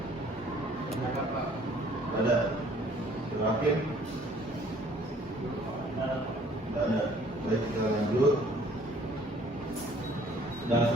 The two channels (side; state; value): both; normal; correlation 0.58